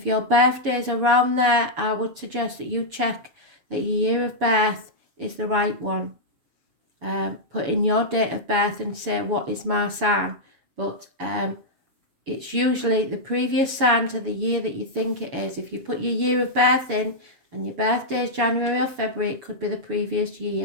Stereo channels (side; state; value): left; late; 7.0 ms